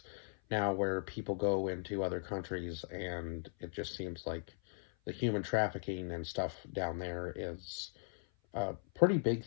now where people go into other countries, and it just seems like the human trafficking and stuff down there is a pretty big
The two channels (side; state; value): right; silent; 52 dB below the other